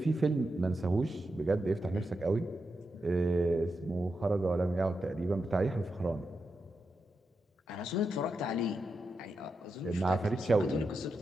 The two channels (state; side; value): normal; both; correlation 0.87